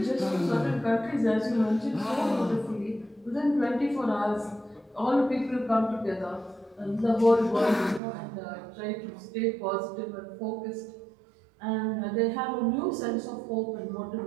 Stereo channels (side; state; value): left; drops out; at 8.0 s